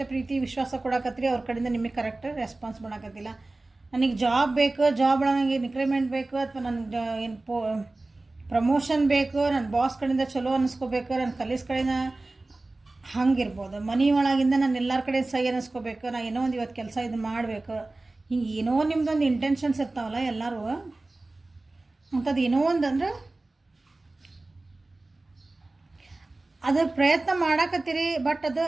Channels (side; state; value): left; quieter; 3.0 dB